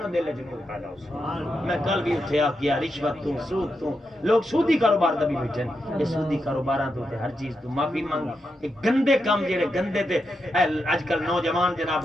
دل وچ نور پیدا ہو میں کل بھی اٹھے آ گیا رشوت تو سود تو لوگ سودی کاروبار دا بھی بیٹھن یہ سودی کاروباراں تو تے ہر چیز تو معافی مانگ کہ گندے کام جڑے گندے تے اج کل نوجوان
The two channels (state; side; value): normal; both; correlation 0.85